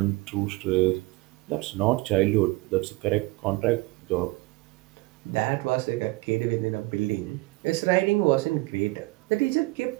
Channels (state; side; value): quieter; left; 22.3 dB